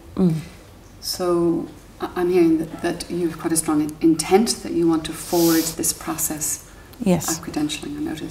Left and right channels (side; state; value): both; identical; correlation 1.00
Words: Okay. So I'm hearing that you've quite a strong intent that you want to forward this process Yes. of credentialing. I